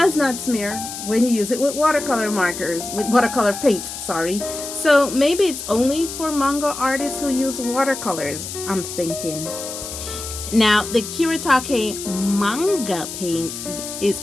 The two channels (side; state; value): left; noise; hiss, 8 dB below the sound